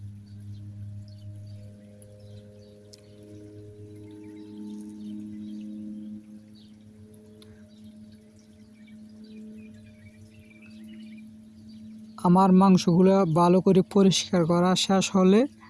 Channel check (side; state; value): both; identical; correlation 1.00